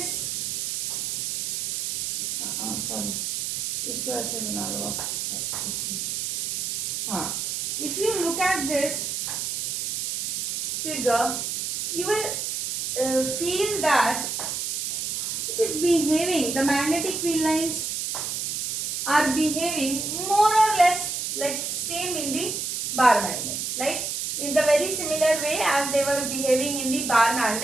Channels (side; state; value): right; noise; hiss, 2 dB below the sound